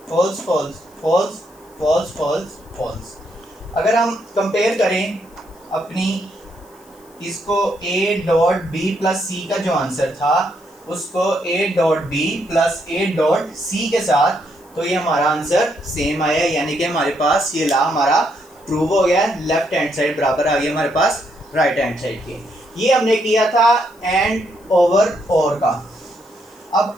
false false false false false false. अगर हम कंपेयर करें अपनी इसको a dot b plus c का जो answer था उसको a dot b plus a dot c के साथ, तो ये हमारा आंसर सेम आया, यानी कि हमारे पास ये ला हमारा प्रूव हो गया। लेफ्ट हैंड साइड बराबर आ गया हमारे पास राइट हैंड साइड के। ये हमने किया था एंड ओवर और का। अब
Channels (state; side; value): noise; left; hiss, 28 dB below the sound